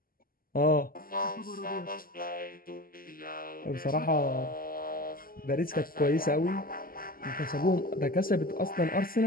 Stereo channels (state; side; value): late; right; 0.42 ms